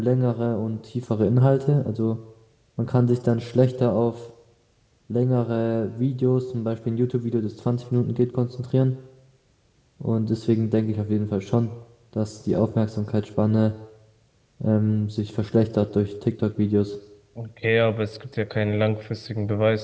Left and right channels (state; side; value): identical; both; correlation 1.00